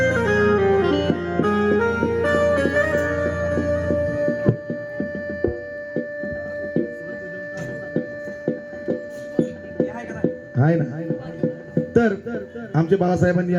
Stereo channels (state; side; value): identical; both; correlation 1.00